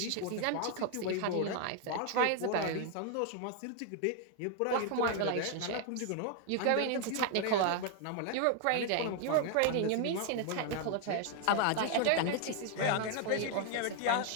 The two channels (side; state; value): both; different; correlation 0.00